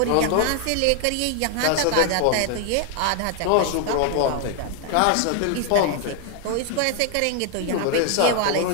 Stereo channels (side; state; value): both; different; correlation 0.00